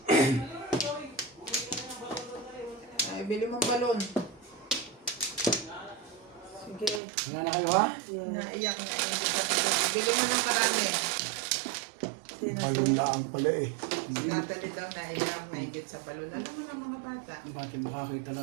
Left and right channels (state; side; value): drops out; left; at 7.0 s